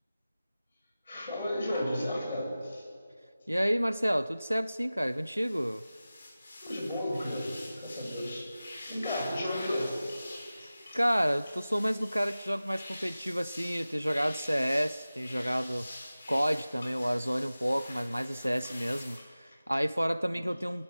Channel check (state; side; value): inverted; both; correlation -0.96